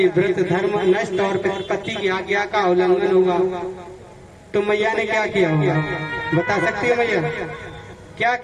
व्रत धर्म नष्ट और पति की आज्ञा का उल्लंघन होगा। तो मैया ने क्या किया होगा बता सकती हो मैया? क्या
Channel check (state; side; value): identical; both; correlation 1.00